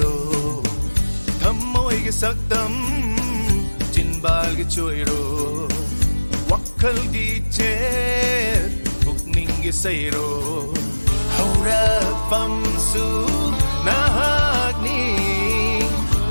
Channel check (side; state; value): both; inverted; correlation -1.00